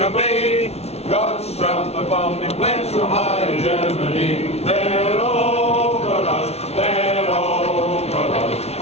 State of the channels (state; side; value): late; right; 0.31 ms